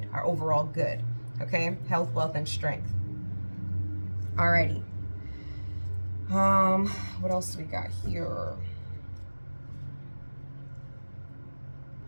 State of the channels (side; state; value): both; inverted; correlation -1.00